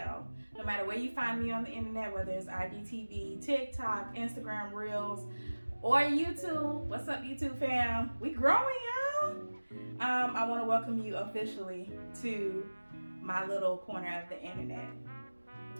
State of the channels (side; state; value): both; inverted; correlation -1.00